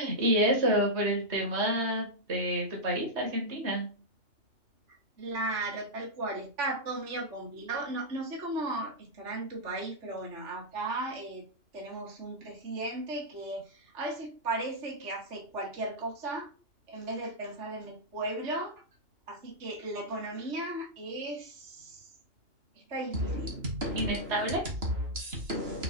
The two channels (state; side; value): late; left; 2.8 ms